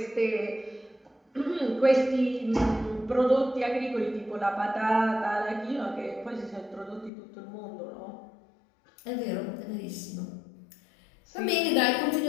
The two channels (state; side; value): drops out; right; at 7.1 s